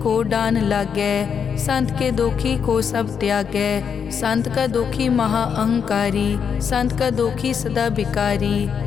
डान लागै, संत के दोखी को सब त्यागै। संत का दोखी महा अहंकारी, संत का दोखी सदा बिकारी।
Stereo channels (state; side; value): quieter; right; 7.0 dB